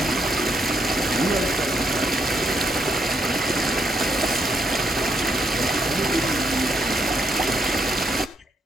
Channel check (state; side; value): normal; both; correlation 0.76